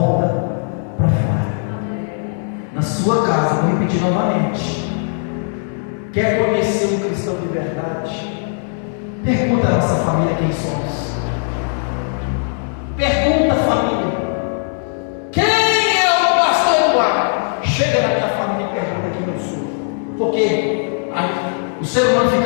para fora. Na sua casa, vou repetir novamente: quer conhecer um cristão de verdade? Pergunta à nossa família quem somos. Pergunta à família: quem é o pastor Eduardo? Chega na minha família e pergunta quem eu sou. Porque o ser humano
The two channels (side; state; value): right; silent; 66 dB below the other